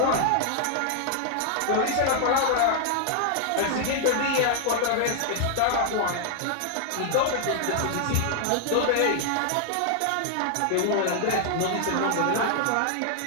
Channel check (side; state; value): both; different; correlation 0.00